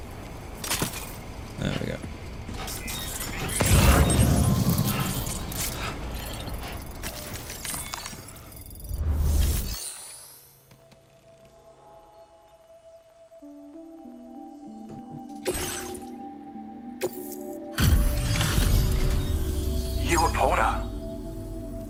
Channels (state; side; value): identical; both; correlation 1.00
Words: There we go. You were Porter?